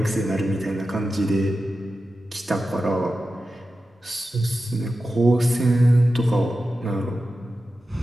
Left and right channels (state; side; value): normal; both; correlation 0.92